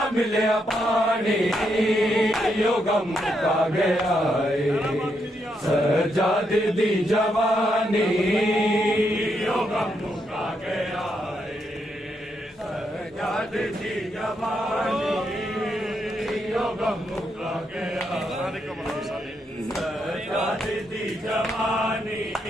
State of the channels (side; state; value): both; normal; correlation 0.79